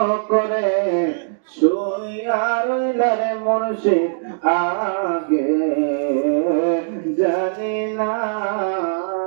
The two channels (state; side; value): silent; left; digital silence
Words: করে শুইয়া রইলা রে মুর্শিদ আগে জানি না